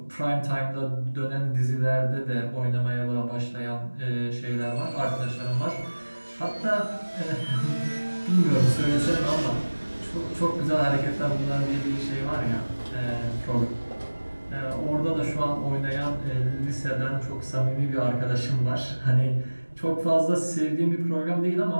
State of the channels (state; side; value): inverted; both; correlation -1.00